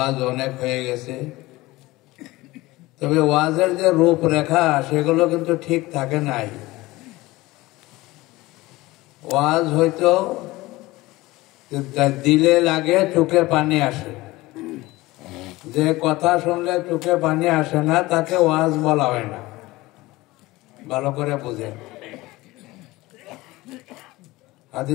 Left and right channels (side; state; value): right; quieter; 19.7 dB